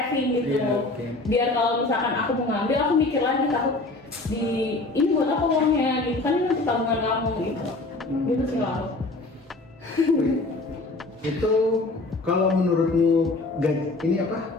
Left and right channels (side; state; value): right; quieter; 3.1 dB